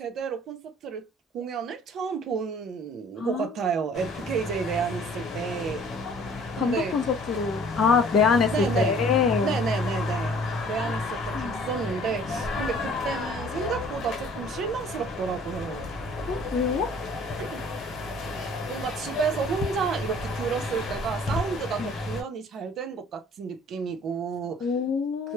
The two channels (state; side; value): normal; both; correlation 0.53